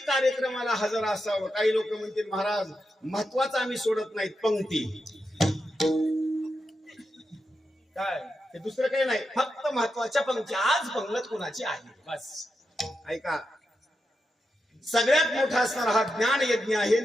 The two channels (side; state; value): both; normal; correlation 0.87